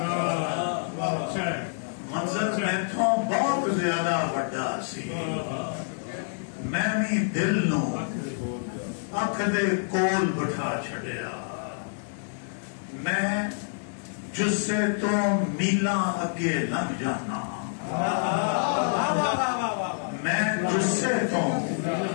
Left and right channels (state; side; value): silent; right; digital silence